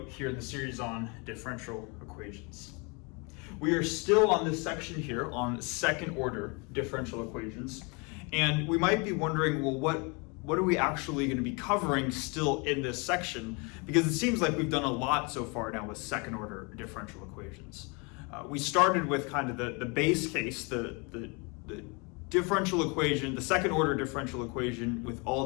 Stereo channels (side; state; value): right; quieter; 30.9 dB